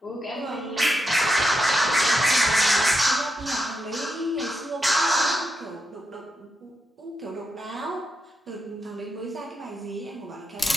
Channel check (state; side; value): normal; both; correlation 0.84